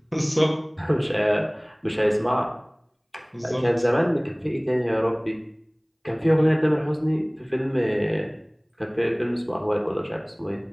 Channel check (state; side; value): identical; both; correlation 1.00